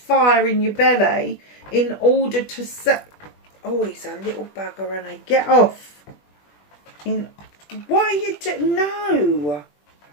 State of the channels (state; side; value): late; right; 20 ms